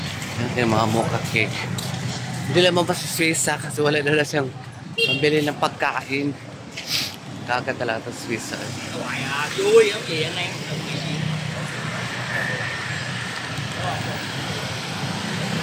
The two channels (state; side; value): identical; both; correlation 1.00